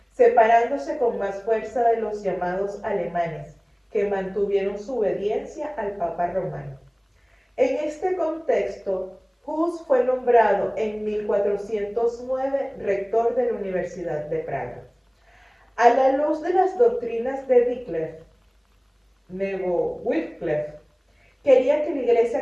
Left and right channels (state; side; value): identical; both; correlation 1.00